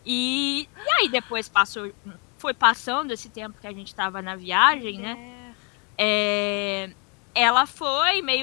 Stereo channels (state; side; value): quieter; right; 34.9 dB